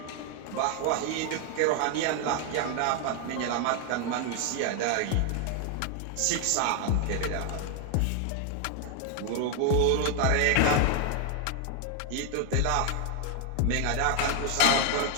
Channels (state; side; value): different; both; correlation 0.00